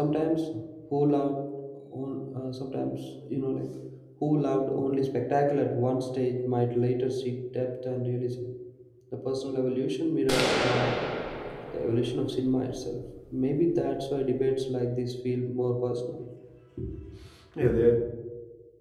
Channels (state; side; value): identical; both; correlation 1.00